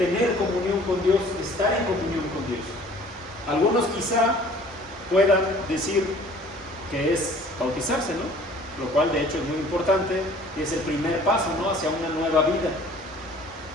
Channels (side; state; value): both; normal; correlation 0.51